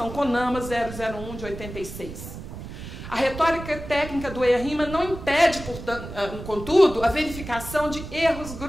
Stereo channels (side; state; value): right; noise; rumble, 11 dB below the sound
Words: CONAMA 001 de 86. A retórica técnica do EIA-RIMA não impede, portanto, contudo, a verificação de erros